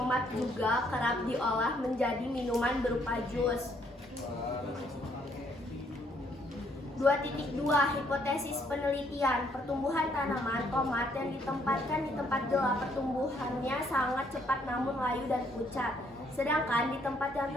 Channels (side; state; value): both; normal; correlation 0.68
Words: juga kerap diolah menjadi minuman berupa jus. 2.2 Hipotesis penelitian. Pertumbuhan tanaman tomat yang ditempatkan di tempat gelap pertumbuhannya sangat cepat namun layu dan pucat. Sedangkan di tempat yang